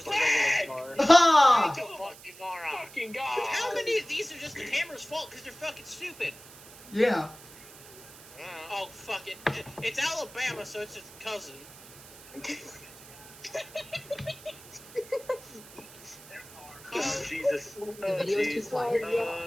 a regular car. Ha! You fucking moron. Fucking God. How many of these are just the camera's fault because they're fucking stupid? Yeah. Oh, fuck it. It's Alabama, so it's its cousin. Oh, Jesus. Oh, video's too quiet.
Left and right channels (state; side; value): noise; right; hiss, 19 dB below the sound